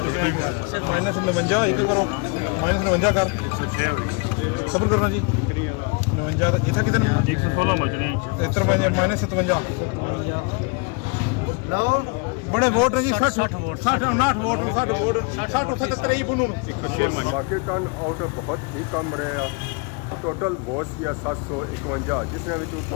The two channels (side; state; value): right; quieter; 31.2 dB